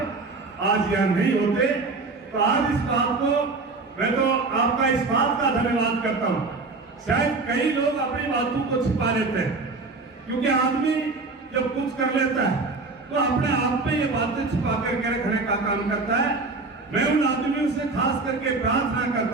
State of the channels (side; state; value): left; quieter; 3.8 dB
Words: आज यहाँ नहीं होते। तो आज इस बात को मैं तो आपका इस बात का धन्यवाद करता हूँ। शायद कई लोग अपनी बातों को छिपा लेते हैं, क्योंकि आदमी जब कुछ कर लेता है तो अपने आप में ये बातें छिपा करके रखने का काम करता है। मैं उन आदमियों से खास करके प्रार्थना